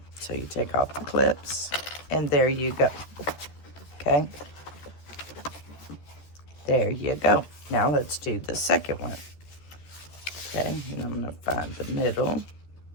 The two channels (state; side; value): late; right; 13 ms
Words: So you take off the clips, and there you go. Okay, there you go. Now let's do the second one. Okay, and I'm going to find the middle.